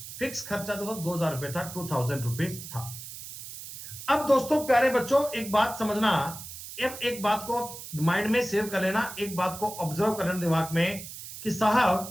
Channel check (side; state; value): right; noise; hiss, 12 dB below the sound